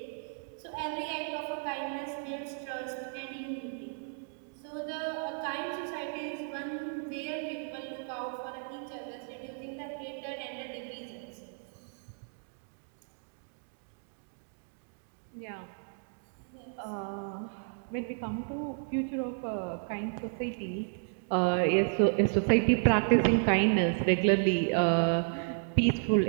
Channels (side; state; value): left; silent; 56 dB below the other